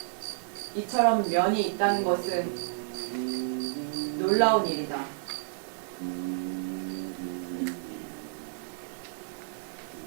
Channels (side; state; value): left; silent; digital silence